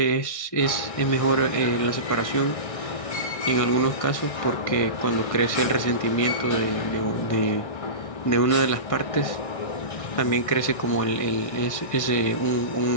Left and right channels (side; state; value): right; late; 1.6 ms